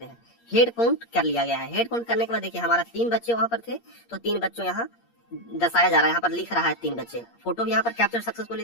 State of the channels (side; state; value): right; late; 8.6 ms